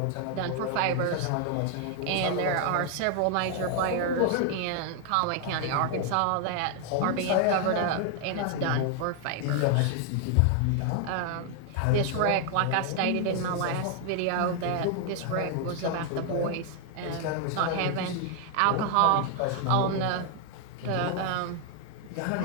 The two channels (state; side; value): different; both; correlation 0.00